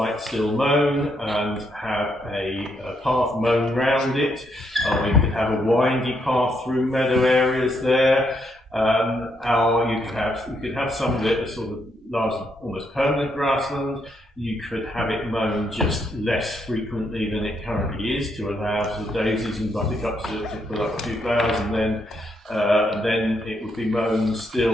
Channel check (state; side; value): normal; both; correlation 0.76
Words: still mown and have a path mown round it. We could have a windy path through meadow areas there. Or you could have some of it as sort of large, almost permanent grassland. You could have it mown just less frequently than it currently is to allow sort of daisies and buttercups to pull up a few flowers, and then it would be mown